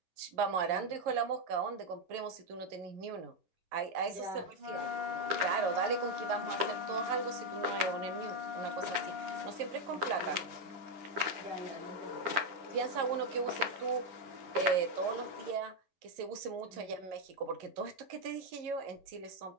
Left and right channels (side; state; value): left; late; 11 ms